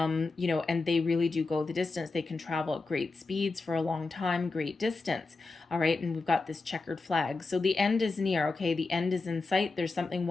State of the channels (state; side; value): quieter; right; 3.7 dB